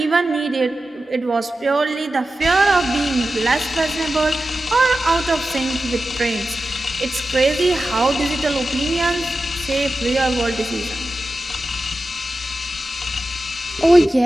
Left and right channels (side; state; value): both; normal; correlation 0.93